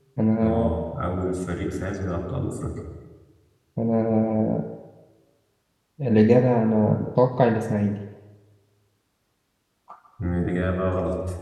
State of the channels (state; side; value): identical; both; correlation 1.00